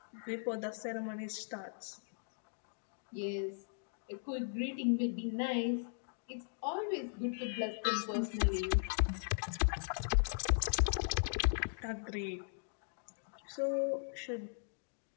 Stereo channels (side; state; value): right; silent; digital silence